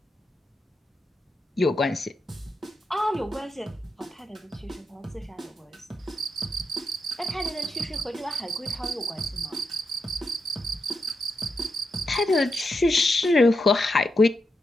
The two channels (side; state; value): both; normal; correlation 0.85